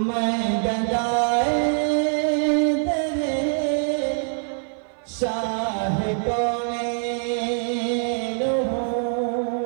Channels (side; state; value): left; silent; 57 dB below the other